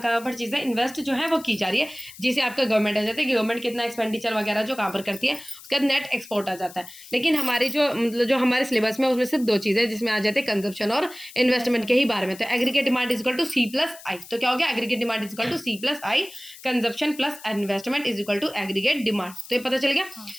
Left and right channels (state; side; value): noise; left; hiss, 18 dB below the sound